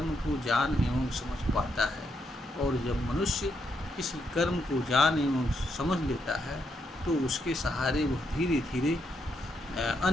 को जान एवं समझ पाता है। और जब मनुष्य किसी कर्म को जान एवं समझ लेता है, तो उसके सहारे वह धीरे धीरे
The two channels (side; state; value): both; normal; correlation 0.79